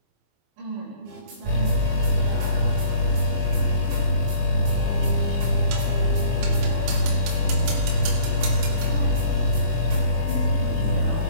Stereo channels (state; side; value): late; left; 24 ms